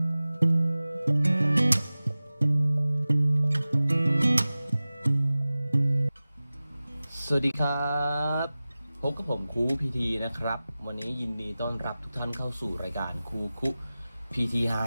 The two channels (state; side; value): inverted; both; correlation -0.97